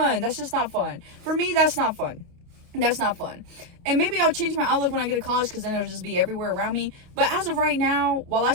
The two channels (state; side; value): late; left; 29 ms